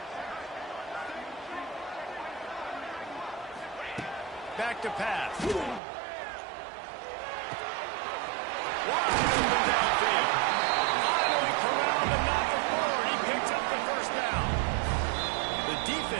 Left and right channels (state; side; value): drops out; left; at 5.8 s